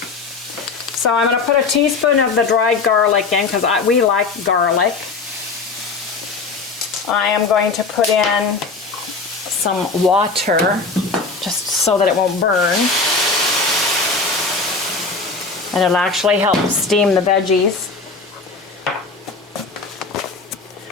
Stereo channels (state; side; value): quieter; right; 4.1 dB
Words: So I'm going to put a teaspoon of the dried garlic in because we like garlic. I am going to put in some water just so that it won't burn. And it'll actually help steam the veggies.